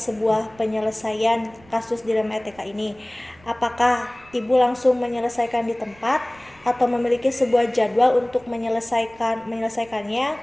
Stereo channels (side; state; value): right; noise; rumble, 28 dB below the sound